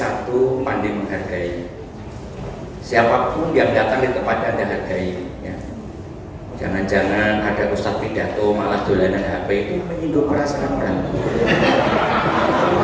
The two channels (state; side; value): identical; both; correlation 1.00